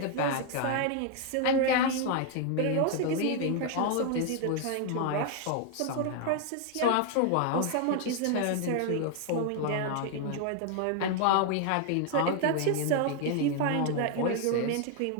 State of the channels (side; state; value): both; different; correlation 0.00